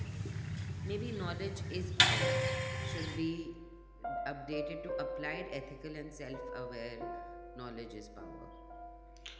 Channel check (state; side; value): identical; both; correlation 1.00